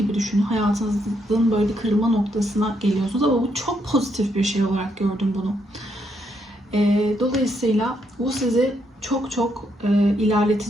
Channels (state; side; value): normal; both; correlation 0.76